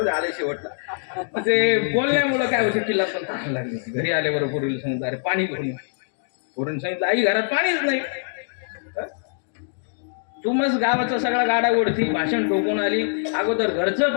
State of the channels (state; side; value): silent; right; digital silence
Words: आले शेवटला ते बोलण्यामुळं काय होतं तिला पण तहान लागली घरी आल्याबरोबर पोरीला सांगितलं अरे पाणी घेऊन पोरीने सांगितलं आई घरात पाणीच नाही तू मग गावाचा सगळा गाडा ओढती भाषण ठोकून आली अगोदर घरचं